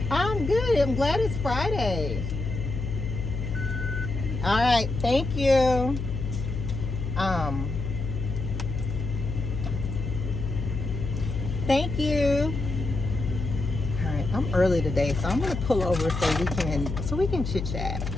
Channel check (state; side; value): noise; left; hum, 4 dB below the sound